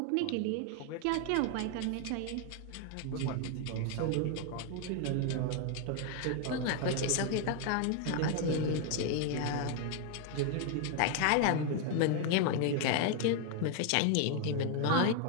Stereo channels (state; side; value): different; both; correlation 0.01